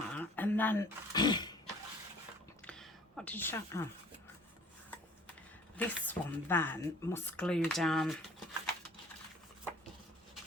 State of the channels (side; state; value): both; normal; correlation 0.51